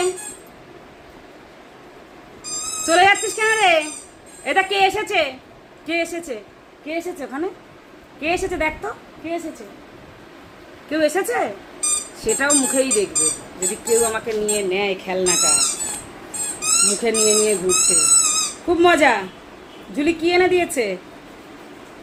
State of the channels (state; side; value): identical; both; correlation 1.00